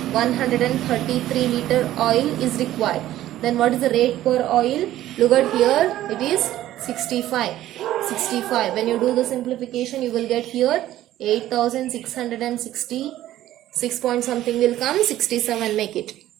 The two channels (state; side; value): quieter; left; 13.8 dB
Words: 133 liter oil is required. Then what is the rate per oil? Look at here, it is 65. When you do the simplification, you will get here 8,666 point something will come, 67 make it.